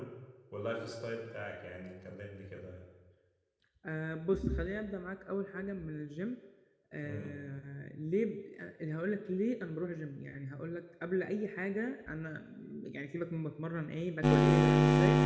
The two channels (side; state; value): both; identical; correlation 1.00